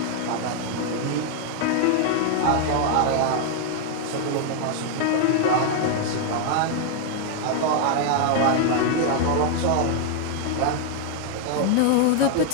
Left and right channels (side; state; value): both; different; correlation 0.00